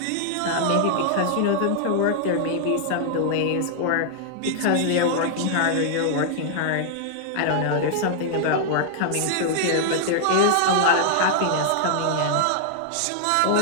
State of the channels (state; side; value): different; both; correlation -0.01